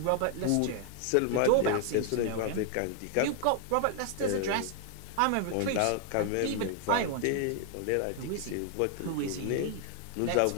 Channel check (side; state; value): both; different; correlation 0.00